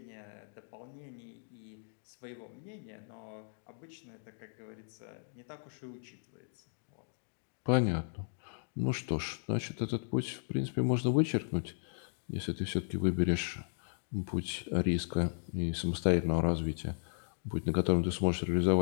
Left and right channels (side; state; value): right; silent; digital silence